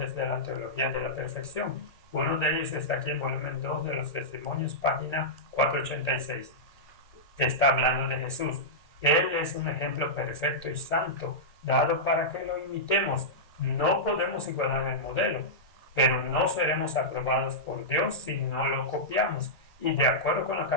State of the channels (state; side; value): normal; both; correlation -0.11